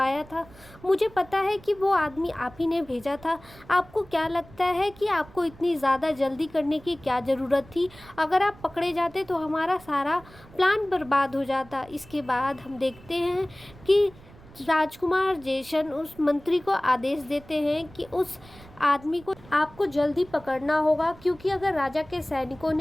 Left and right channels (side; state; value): right; noise; rumble, 22 dB below the sound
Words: था, मुझे पता है कि वो आदमी आप ही ने भेजा था। आपको क्या लगता है कि आपको इतनी ज़्यादा जल्दी करने की क्या ज़रूरत थी? अगर आप पकड़े जाते तो हमारा सारा प्लान बर्बाद हो जाता। इसके बाद हम देखते हैं कि राजकुमार जेशन उस मंत्री को आदेश देते हैं कि उस आदमी को आपको जल्दी पकड़ना होगा, क्योंकि अगर राजा के सैनिकों